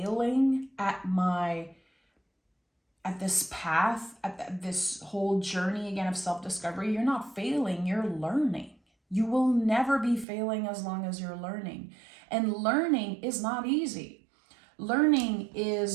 at this path, at this whole journey again of self-discovery? You're not failing, you're learning. You will never be failing as long as you're learning. And learning is not easy. Learning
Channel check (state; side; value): drops out; left; at 10.2 s